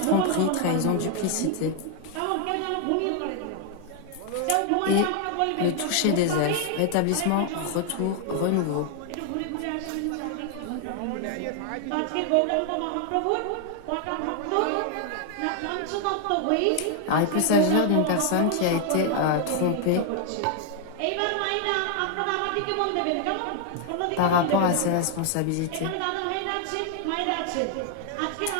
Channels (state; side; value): different; both; correlation 0.00